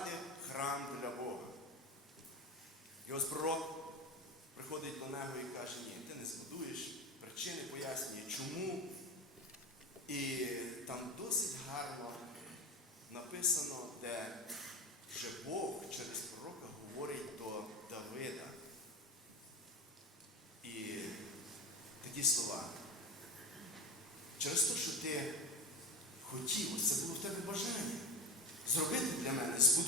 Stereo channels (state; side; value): normal; both; correlation 0.25